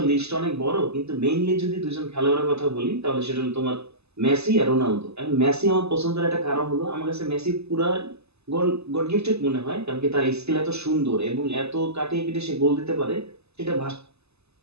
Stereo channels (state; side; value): late; left; 0.79 ms